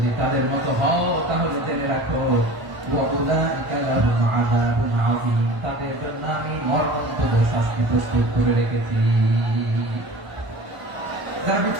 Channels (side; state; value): left; late; 1.0 ms